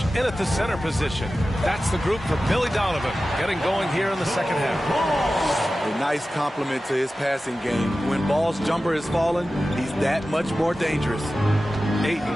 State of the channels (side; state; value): both; normal; correlation 0.94